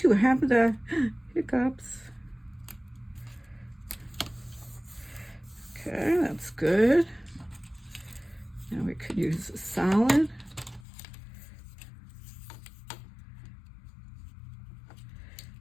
have the hiccups. Okay, that's good. Now we could use a solid.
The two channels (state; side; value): drops out; right; at 10.8 s